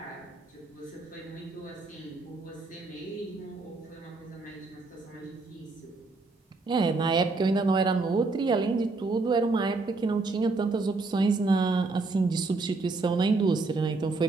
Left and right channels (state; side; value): quieter; left; 3.6 dB